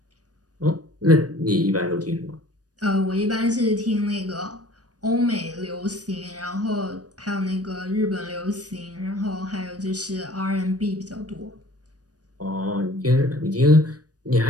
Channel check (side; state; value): left; late; 0.68 ms